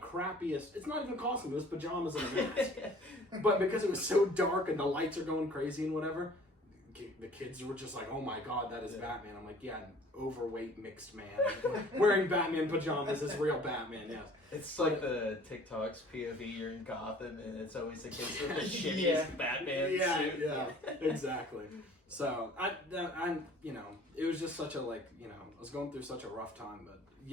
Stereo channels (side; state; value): both; normal; correlation 0.51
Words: it's not even costume, it was pajamas and a mask. But because it was so dark and the lights are going crazy and whatever, the kids were just like, oh my god, that is Batman. I'm like, yeah, an overweight mixed man wearing Batman pajamas is real Batman, yes. It's like the TikTok's POV, you're in Gotham, and it's always the kids with the shittiest Batman suit. Yeah, exactly. So, I'm it was just such a, I was going through such a rough time,